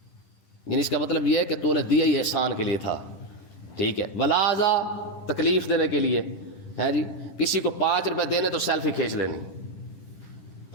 یعنی اس کا مطلب یہ ہے کہ تو نے دیا ہی احسان کے لیے تھا. ٹھیک ہے. ولازا تکلیف دینے کے لیے ہے جی. کسی کو 5 روپے دینے تو سیلفی کھینچ لینی,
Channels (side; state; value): right; late; 10 ms